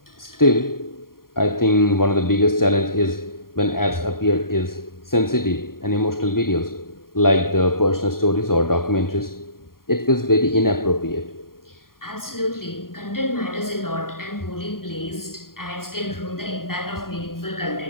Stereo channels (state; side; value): late; right; 0.92 ms